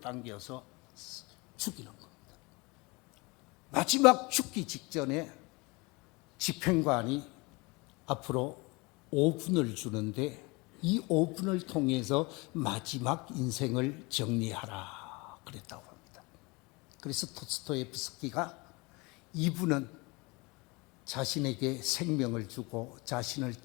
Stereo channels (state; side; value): quieter; right; 26.3 dB